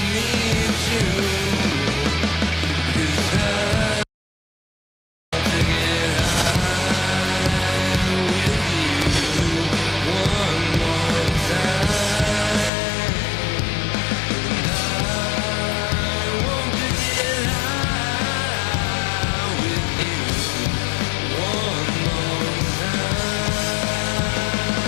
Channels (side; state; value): right; drops out; at 12.7 s